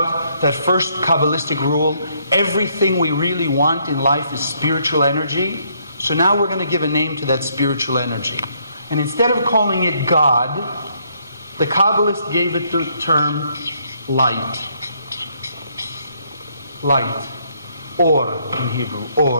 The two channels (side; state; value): both; inverted; correlation -0.70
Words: that first Kabbalistic rule, everything we really want in life is spiritual energy. So now we're going to give a name to that spiritual energy. And instead of calling it God, the Kabbalists gave it the term light. Light. Or in Hebrew.